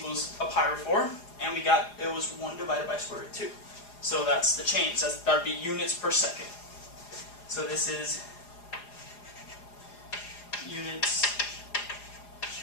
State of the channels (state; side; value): late; right; 4.9 ms